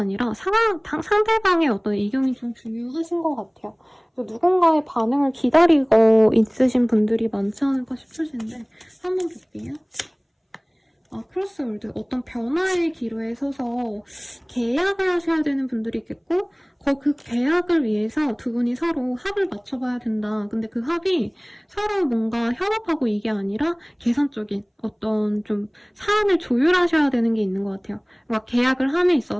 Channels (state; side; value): identical; both; correlation 1.00